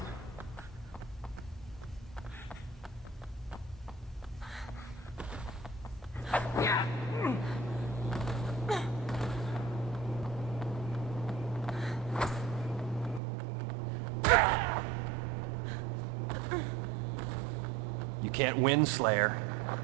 You can't win, Slayer.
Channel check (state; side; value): drops out; left; at 13.2 s